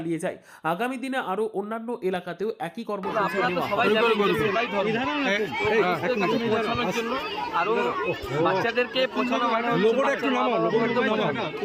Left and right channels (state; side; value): identical; both; correlation 1.00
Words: যাই। আগামী দিনে আরো অন্যান্য এলাকাতেও একই কর্মসূচি নেওয়া হবে। আরো বাচ্চাদেরকে